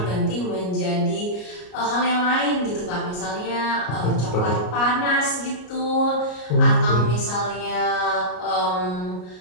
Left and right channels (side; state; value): right; late; 33 ms